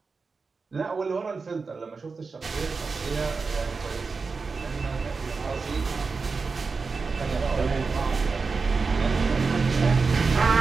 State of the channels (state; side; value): quieter; left; 4.5 dB